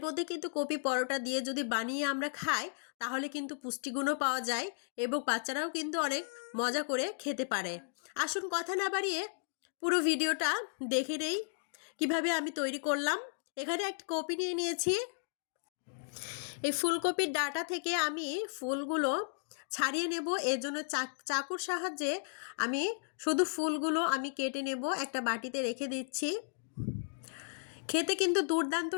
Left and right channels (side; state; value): right; silent; digital silence